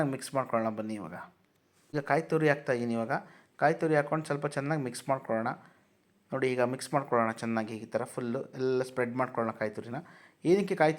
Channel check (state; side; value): identical; both; correlation 1.00